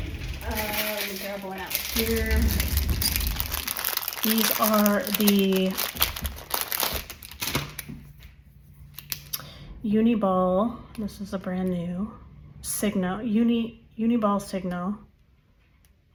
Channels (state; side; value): identical; both; correlation 1.00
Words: grab one out here. These are the Uniball, this is a brand new, Signo, Uniball Signo